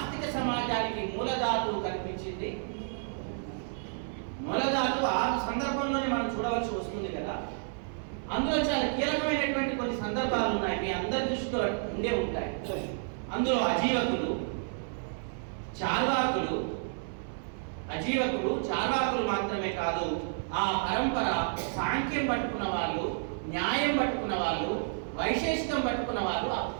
సమాజానికి మూలధాతువు కనిపించింది. మూలధాతువు ఆ సందర్భంలోనే మనం చూడవలసి వస్తుంది కదా. అందులో చాలా కీలకమైనటువంటి కొన్ని సందర్భాలు ఉన్నాయి, మీ అందరి దృష్టిలో ఉండే ఉంటాయి. అందులో అజీవకులు, చార్వాకులు మాత్రమే కాదు, ఆ పరంపర సాంఖ్యం పట్టుకున్న వాళ్ళు, న్యాయం పట్టుకున్న వాళ్ళు, వైశేషికం పట్టుకున్న వాళ్ళు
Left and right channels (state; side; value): silent; left; 56 dB below the other